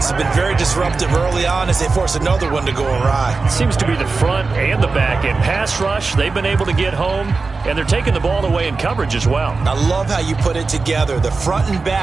has been very disruptive early on as they force another one to go awry. Seems to be the front and the back end. Pass rush, they've been able to get home, and they're taking the ball away in coverage as well. I love how you put it together. The front and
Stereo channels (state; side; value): quieter; left; 4.1 dB